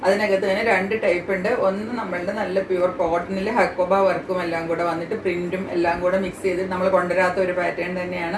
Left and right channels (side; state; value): both; identical; correlation 1.00